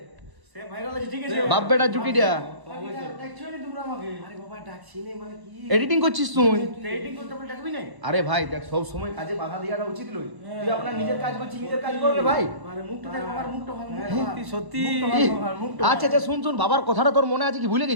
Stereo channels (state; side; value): late; left; 1.1 ms